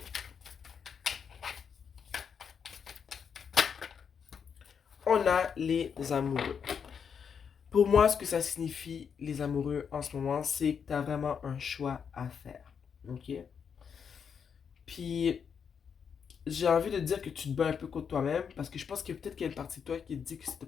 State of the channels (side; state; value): right; quieter; 6.9 dB